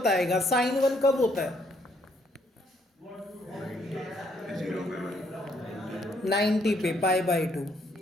साइन 1 कब होता है, 90 पे, पाई बाई टू।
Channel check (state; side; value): normal; both; correlation 0.70